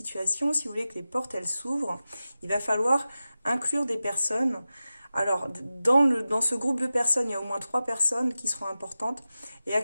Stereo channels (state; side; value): inverted; both; correlation -0.94